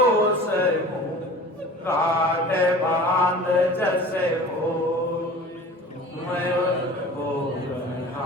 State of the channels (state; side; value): normal; both; correlation 0.41